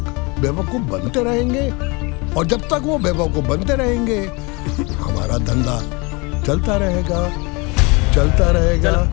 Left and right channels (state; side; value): quieter; right; 27.8 dB